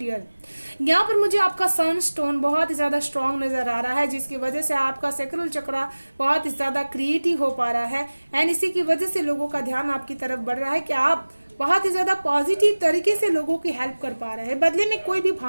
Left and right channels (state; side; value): inverted; both; correlation -1.00